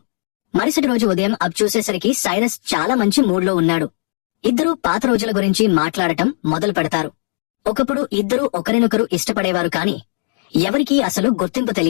మరుసటి రోజు ఉదయం అబ్ చూసేసరికి సైరస్ చాలా మంచి మూడ్లో ఉన్నాడు. ఇద్దరూ పాత రోజుల గురించి మాట్లాడటం మొదలు పెడతారు. ఒకప్పుడు ఇద్దరూ ఒకరినొకరు ఇష్టపడేవారు కాని ఎవరికీ అసలు గుర్తింపు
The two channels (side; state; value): right; silent; digital silence